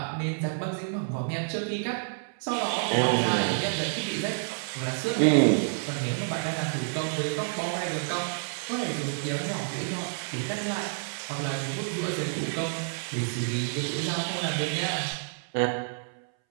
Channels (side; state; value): left; silent; 59 dB below the other